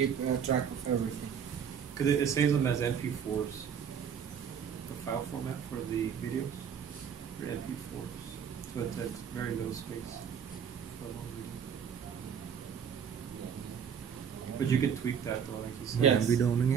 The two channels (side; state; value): left; quieter; 7.7 dB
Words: track of everything. Because it saves them as MP4s. The file format for the videos are MP4s. So it takes very little space for a long video. But you could tweak that though, like you said. Yes. Làm video nó